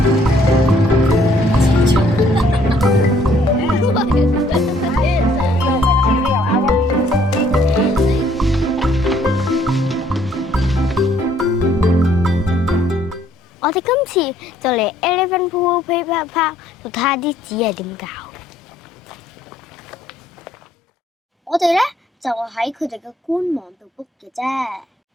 我哋今次就嚟 Elephant PooPooPaper Park 度睇下啲紙係點搞。我哋咧就喺佢哋嘅官網度 book 嘅啫。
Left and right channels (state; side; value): normal; both; correlation 0.64